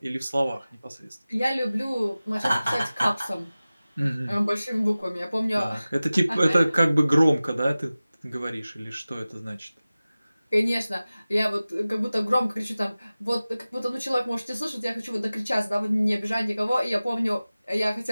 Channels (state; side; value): inverted; both; correlation -0.97